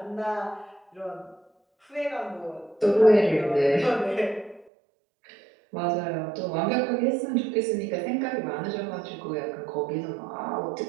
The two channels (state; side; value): drops out; left; at 4.7 s